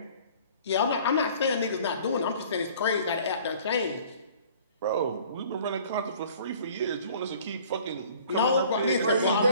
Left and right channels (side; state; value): both; inverted; correlation -0.51